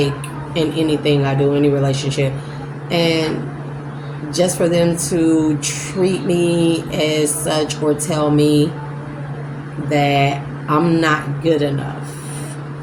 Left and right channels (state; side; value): identical; both; correlation 1.00